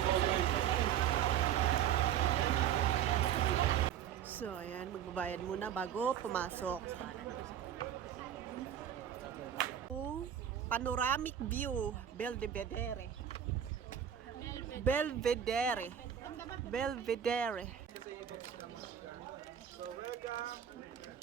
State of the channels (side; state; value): left; quieter; 9.5 dB